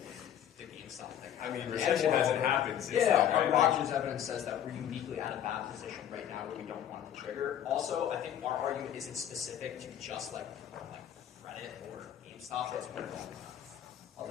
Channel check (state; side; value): quieter; right; 10.2 dB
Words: the GameStop thing. I mean, recession hasn't happened since then, Yeah, right? Rogers' evidence says that we're uniquely at a bad position right now where we don't want to trigger. Also, I think our argument isn't specific to just like Reddit or GameStop. It's more I'll